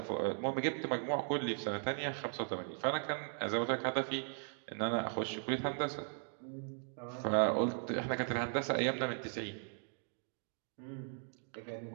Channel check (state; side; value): silent; left; 52 dB below the other